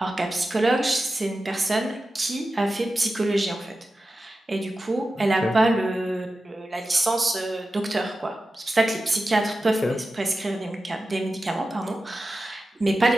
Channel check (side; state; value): both; normal; correlation 0.93